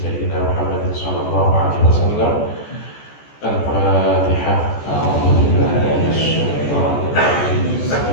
Muhammadin sallallahu alaihi wasallam. Al-Fatihah. A'udzu billahi minasyaitonir rajim.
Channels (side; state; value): right; late; 14 ms